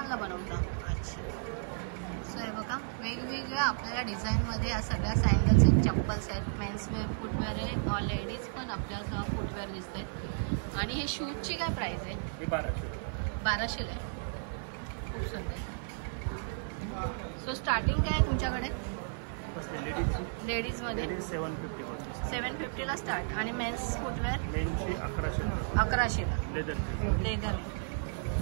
बनवता. अच्छा. सो हे बघा, वेगवेगळ्या आपल्याला डिझाईनमध्ये या सगळ्या सँडल्स आहेत, चप्पल्स आहेत, मेन्सवेअर, फुटवेअर आहे, लेडीज पण आपल्याला फुटवेअर दिसत आहेत. आणि हे शूजची काय प्राइस आहे? 1200 आहे. खूप सुंदर. सो स्टार्टिंग काय आहे तुमच्याकडे लेडीजमध्ये? 750ला स्टार्ट. आणि मेन्स फुटवेअर 1100ला. लेदर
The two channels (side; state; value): left; silent; 56 dB below the other